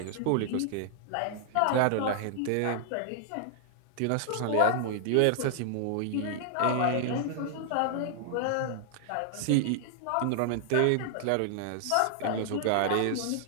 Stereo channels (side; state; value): both; different; correlation 0.00